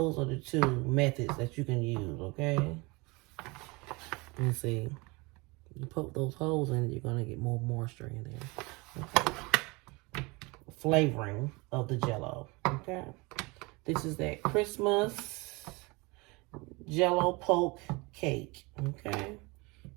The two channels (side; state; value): left; quieter; 25.9 dB